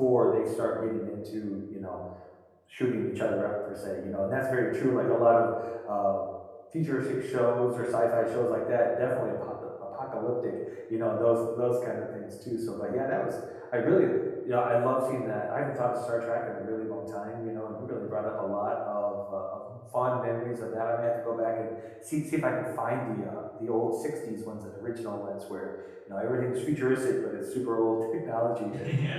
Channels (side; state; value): both; identical; correlation 1.00